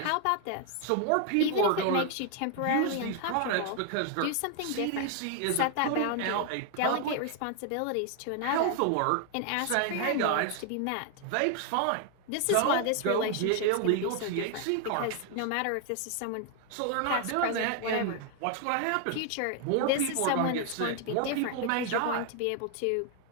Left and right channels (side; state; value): both; different; correlation 0.00